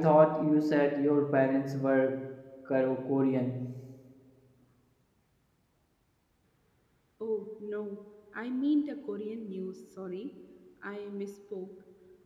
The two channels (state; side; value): identical; both; correlation 1.00